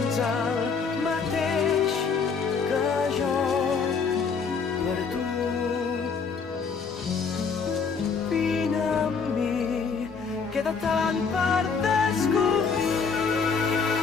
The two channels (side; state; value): right; quieter; 5.4 dB